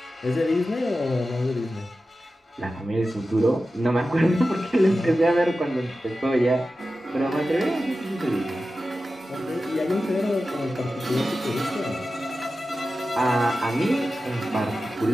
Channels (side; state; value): both; normal; correlation 0.93